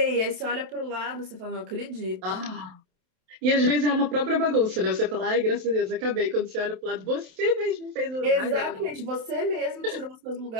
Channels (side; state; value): left; late; 27 ms